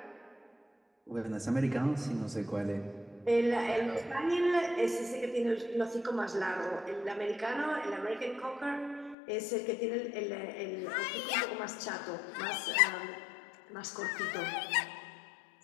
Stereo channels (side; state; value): right; drops out; at 9.2 s